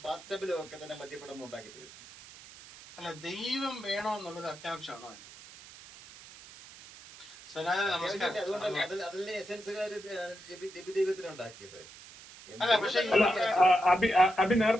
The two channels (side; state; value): right; noise; hiss, 18 dB below the sound